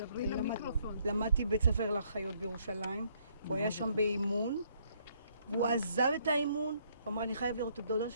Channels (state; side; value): inverted; both; correlation -0.68